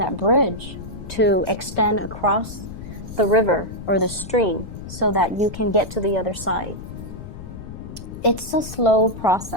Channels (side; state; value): left; noise; rumble, 12 dB below the sound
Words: bridge to extend across the river or the stream so that you can get to the other side. It's a slow